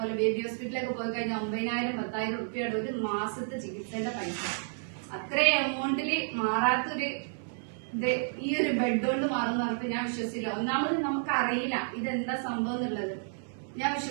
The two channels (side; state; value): left; silent; 57 dB below the other